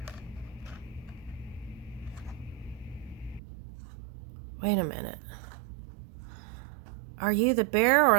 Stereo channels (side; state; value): left; drops out; at 3.4 s